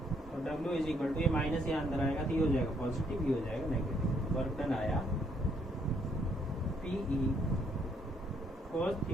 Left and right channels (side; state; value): both; normal; correlation 0.70